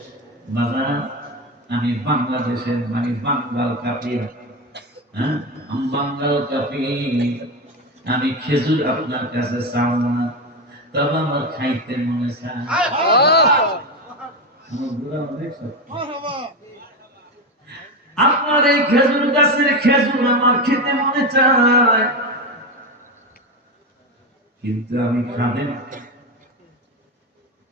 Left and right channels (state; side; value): normal; both; correlation 0.15